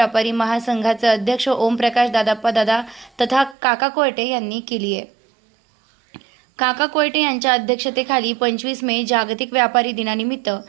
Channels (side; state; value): left; drops out; at 3.6 s